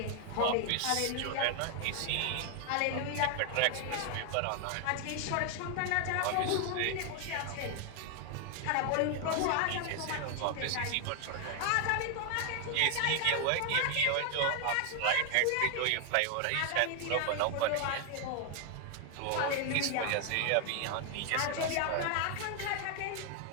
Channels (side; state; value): both; different; correlation 0.00